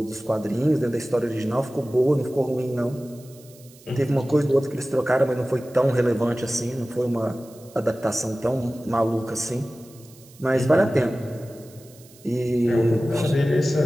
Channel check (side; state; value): right; noise; hiss, 24 dB below the sound